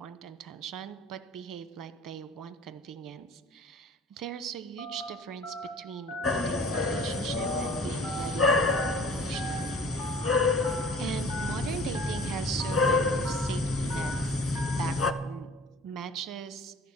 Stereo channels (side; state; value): both; normal; correlation 0.47